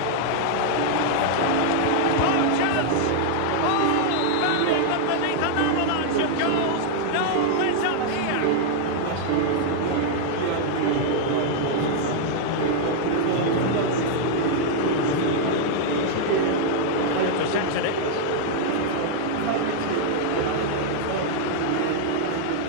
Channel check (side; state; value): both; different; correlation -0.01